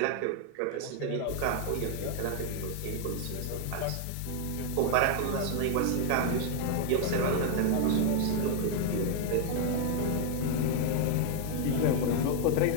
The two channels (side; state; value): both; different; correlation 0.00